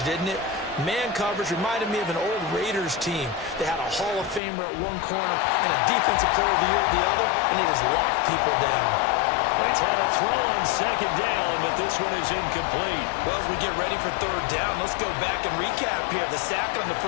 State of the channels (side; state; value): right; drops out; at 4.4 s